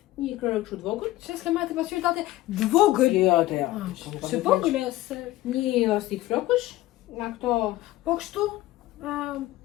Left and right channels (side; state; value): right; quieter; 16.8 dB